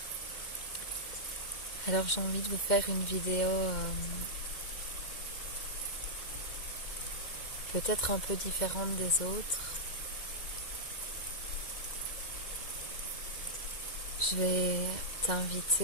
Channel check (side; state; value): right; late; 2.1 ms